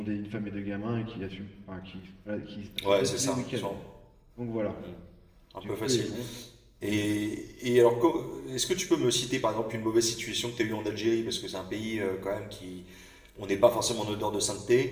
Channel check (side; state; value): both; identical; correlation 1.00